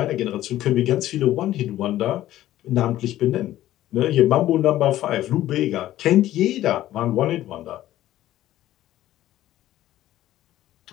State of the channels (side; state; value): right; quieter; 14.0 dB